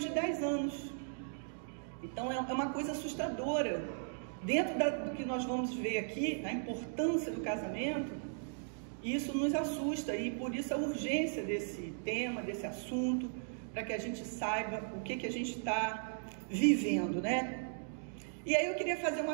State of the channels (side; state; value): left; silent; digital silence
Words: de 10 anos. Então é uma coisa assustadora. Dentro do que nós vamos ver aqui, a importância do casamento, isso nos assusta, e por isso a urgência desse tema, desse assunto, para que a gente saiba o que a gente está vivendo, né? E aí eu queria fazer